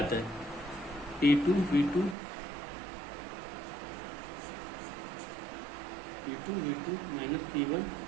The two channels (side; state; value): left; drops out; at 2.1 s